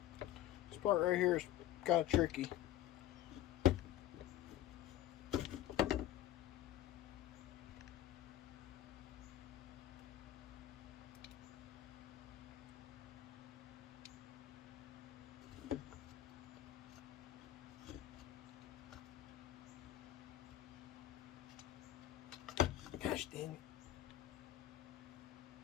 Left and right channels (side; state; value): right; quieter; 13.1 dB